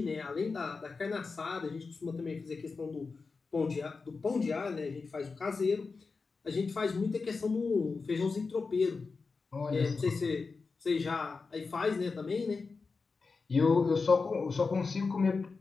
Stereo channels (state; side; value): quieter; right; 4.5 dB